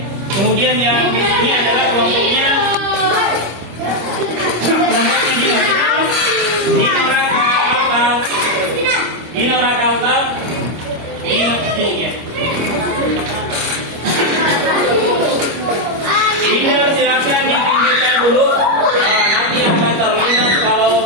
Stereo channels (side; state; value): left; late; 25 ms